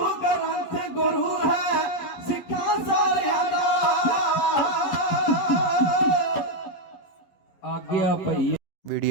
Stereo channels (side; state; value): right; late; 11 ms